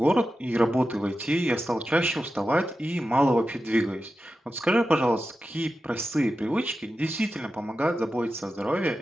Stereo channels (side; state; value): both; normal; correlation 0.92